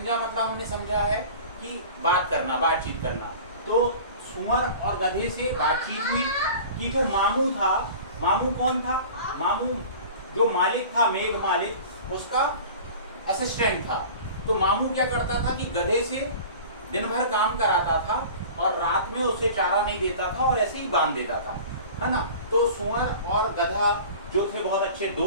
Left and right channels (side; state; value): both; inverted; correlation -0.40